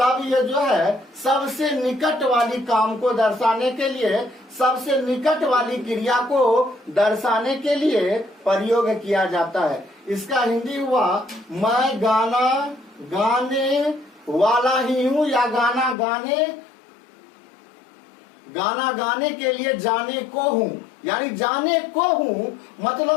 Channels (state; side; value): drops out; right; at 16.0 s